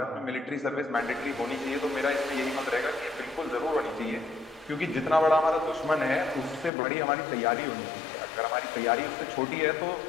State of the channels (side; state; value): right; drops out; at 6.7 s